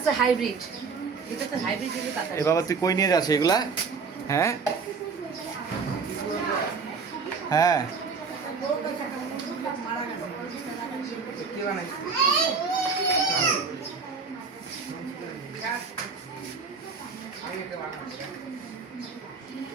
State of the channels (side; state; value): left; quieter; 5.1 dB